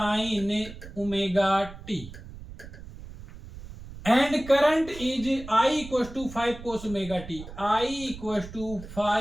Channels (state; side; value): noise; right; rumble, 14 dB below the sound